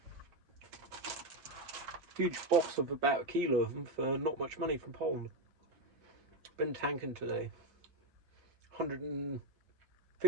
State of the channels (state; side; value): late; left; 6.9 ms